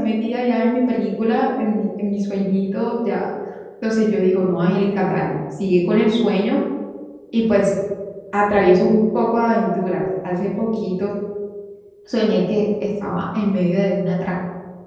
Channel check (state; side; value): identical; both; correlation 1.00